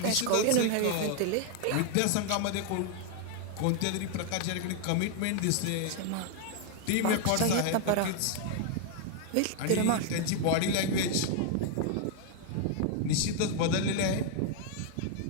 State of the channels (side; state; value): both; different; correlation 0.00